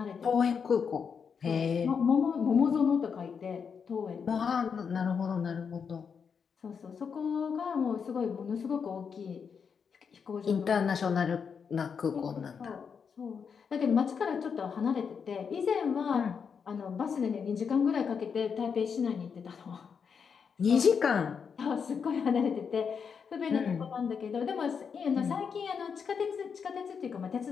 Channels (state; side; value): quieter; right; 6.4 dB